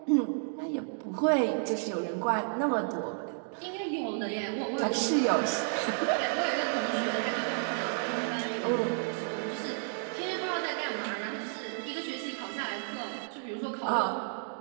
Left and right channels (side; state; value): left; silent; 57 dB below the other